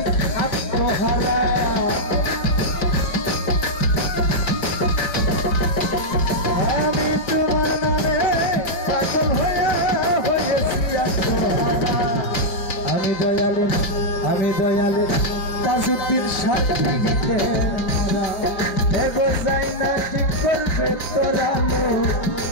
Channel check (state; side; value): late; right; 5.2 ms